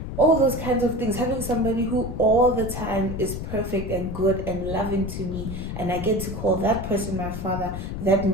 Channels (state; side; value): noise; left; rumble, 6 dB below the sound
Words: All those kinds of things, having somebody who all the time is perfect and good and loving to me, and I get to call that person my father, that